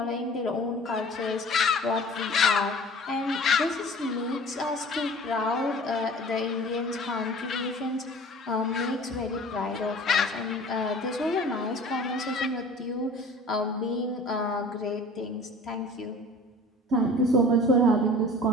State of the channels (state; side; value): normal; both; correlation 0.44